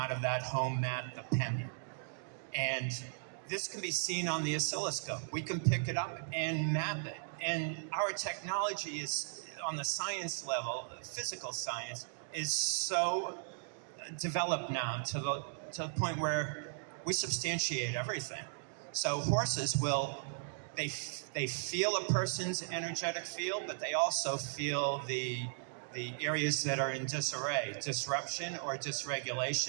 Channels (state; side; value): silent; left; digital silence